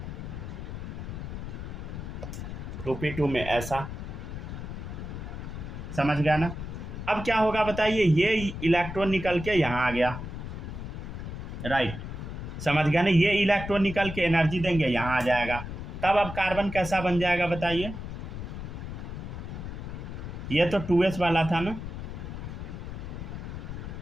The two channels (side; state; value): left; noise; rumble, 7 dB below the sound